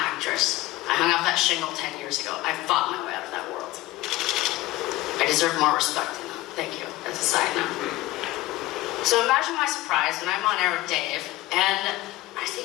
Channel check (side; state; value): right; quieter; 18.0 dB